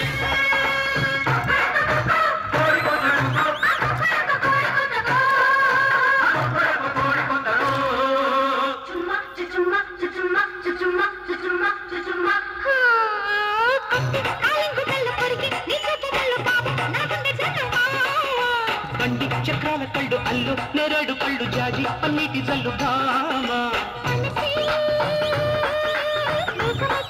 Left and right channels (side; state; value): both; identical; correlation 1.00